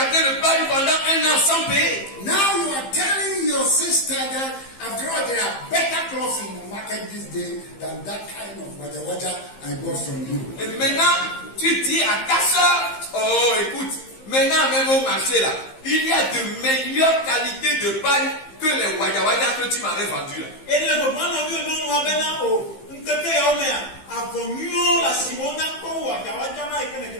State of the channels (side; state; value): right; late; 15 ms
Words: le pari pendant 1 an sans payer. Now you are telling your sister that after all there are better clothes in the market this day than that kind of water I bought from you. Et maintenant, tu dis à ta soeur, oh écoute, maintenant même au marché là, il y a de meilleures qualités de paille que les wada que tu m'avais vendu là.